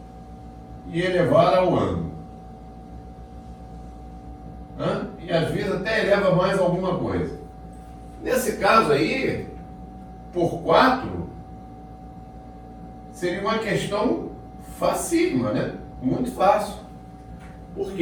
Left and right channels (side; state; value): both; identical; correlation 1.00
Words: e elevar ao ano. E às vezes até eleva mais alguma coisa. Nesse caso aí, por 4, seria uma questão facílima, né? Muito fácil. Por